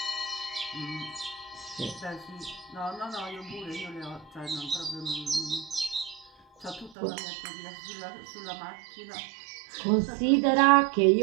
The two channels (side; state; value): left; drops out; at 7.0 s